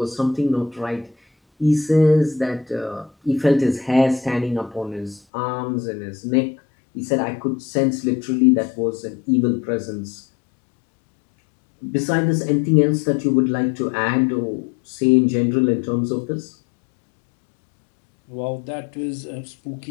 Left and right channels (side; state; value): right; drops out; at 5.2 s